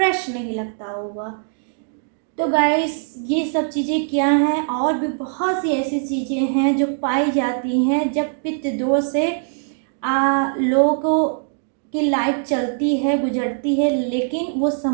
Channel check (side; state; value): left; silent; digital silence